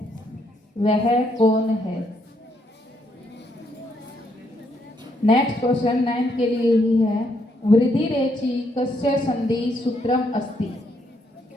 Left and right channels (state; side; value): normal; both; correlation 0.74